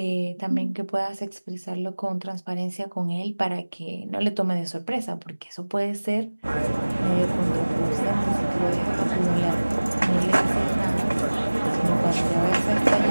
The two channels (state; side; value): inverted; both; correlation -1.00